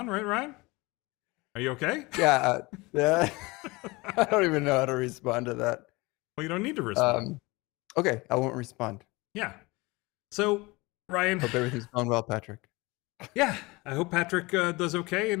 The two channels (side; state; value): right; quieter; 23.6 dB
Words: right, Ryan? Are you okay? Yeah. I don't even know how to respond to that. Well, you don't need to respond. Okay, I won't respond. Yeah. So, Ryan. Hope everything's going well, Patrick. Yeah, I hope Patrick does okay